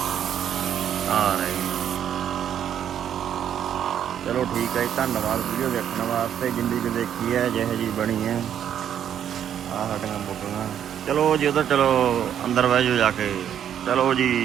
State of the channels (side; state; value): left; quieter; 9.5 dB